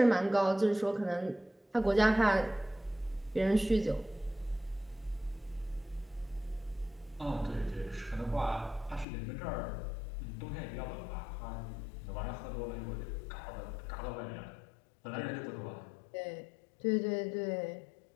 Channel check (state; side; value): drops out; right; at 9.1 s